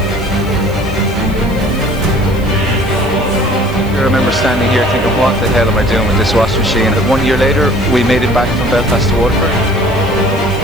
I remember standing here thinking, what the hell am I doing with this washing machine? And 1 year later, we made it back from Belfast to Waterford.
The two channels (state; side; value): noise; right; hiss, 23 dB below the sound